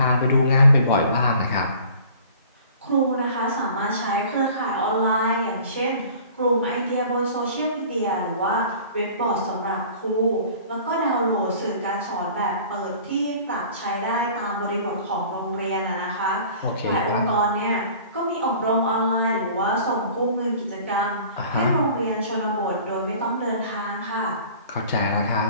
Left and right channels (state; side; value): inverted; both; correlation -0.47